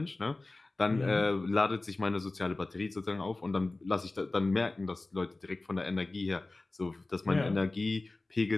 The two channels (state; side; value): quieter; right; 3.1 dB